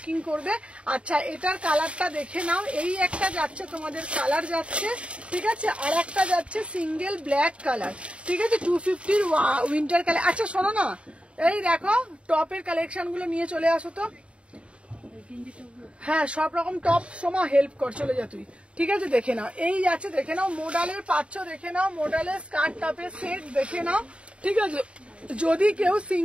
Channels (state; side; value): late; left; 0.059 ms